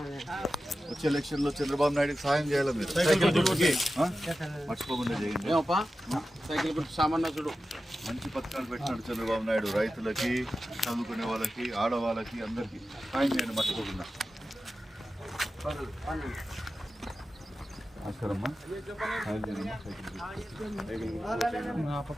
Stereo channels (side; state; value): both; normal; correlation 0.93